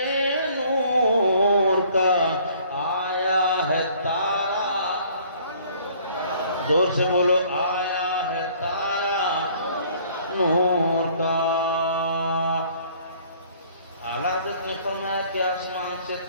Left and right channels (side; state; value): both; inverted; correlation -0.57